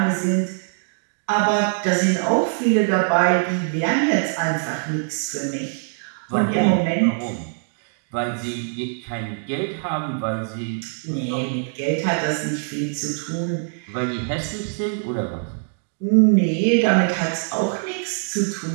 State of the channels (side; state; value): left; silent; 59 dB below the other